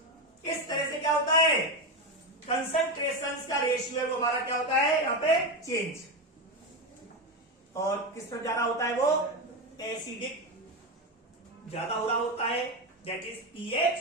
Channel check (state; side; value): normal; both; correlation 0.14